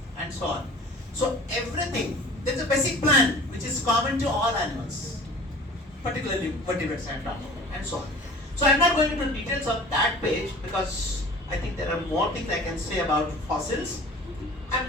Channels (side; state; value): both; normal; correlation 0.43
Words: and so on. So everything, there's a basic plan which is common to all animals, particularly vertebrates and so on. So I'm not going into details of that page because I think there are more things I can say about fossils. I'm